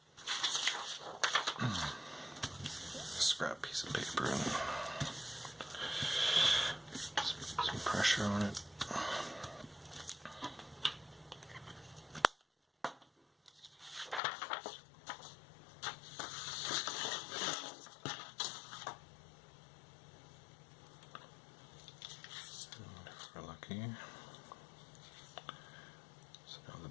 Scrap piece of paper and just put some pressure on it. Lucky. So now the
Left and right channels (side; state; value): right; drops out; at 14.2 s